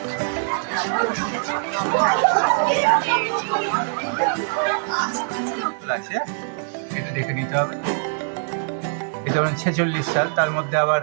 দেখে নিতে হবে। এটা 46 সাল, তার মধ্যে আবার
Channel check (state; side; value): silent; left; digital silence